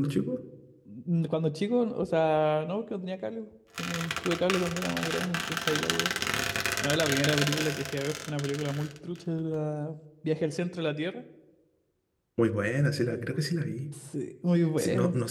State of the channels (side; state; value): both; identical; correlation 1.00